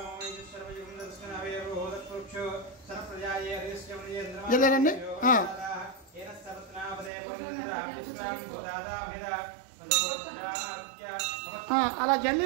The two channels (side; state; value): left; drops out; at 7.1 s